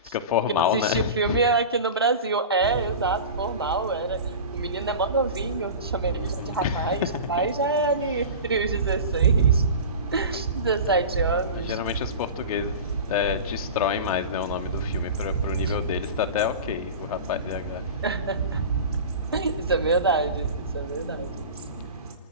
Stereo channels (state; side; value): inverted; both; correlation -0.32